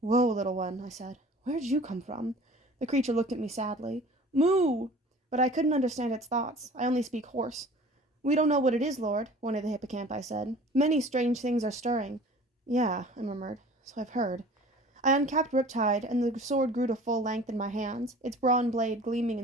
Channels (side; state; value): both; normal; correlation 0.45